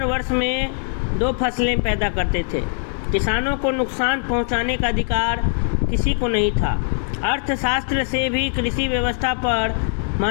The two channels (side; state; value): right; silent; 55 dB below the other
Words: वर्ष में 2 फसलें पैदा करते थे। किसानों को नुकसान पहुंचाने का अधिकार किसी को नहीं था। अर्थशास्त्र से भी कृषि व्यवस्था पर